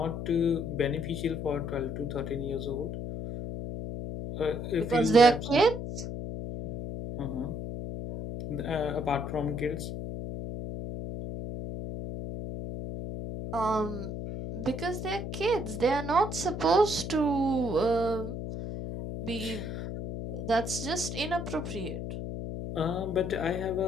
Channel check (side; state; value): left; noise; hum, 5 dB below the sound